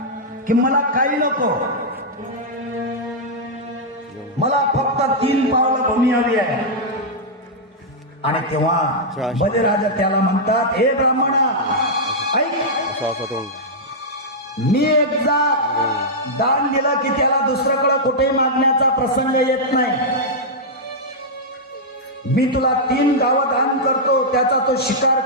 की मला काही नको, मला फक्त 3 पावलं भूमी हवी आहे. आणि तेव्हा बलिराजा त्याला म्हणतात, हे ब्राह्मणा ऐक, मी एकदा दान दिलं की त्याला दुसऱ्याकडे कुठेही मागण्याचा प्रसंग येत नाही. मी तुला 3 गावं दान करतो, त्याचा तो शिकार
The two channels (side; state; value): both; normal; correlation -0.07